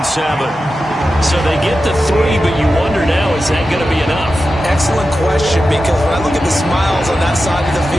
So they get the 3, but you wonder now, is that going to be enough? Excellent question, because when I look at the smiles on that side of the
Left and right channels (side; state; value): both; normal; correlation 0.92